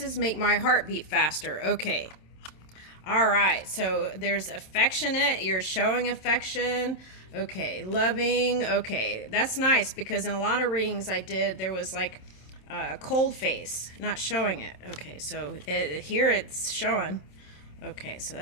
make my heart beat faster. Okay. All right. So there's affectionate. You're showing affection. Okay. Loving. Okay. That's nice because in a lot of readings I did, there was like a cold face, not showing it. Okay. So here it's showing. Okay. So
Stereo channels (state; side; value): late; right; 27 ms